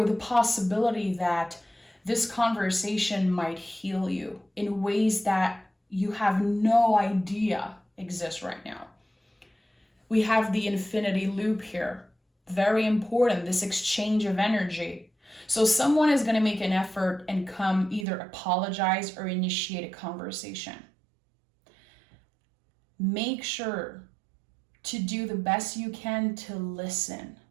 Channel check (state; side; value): drops out; left; at 18.1 s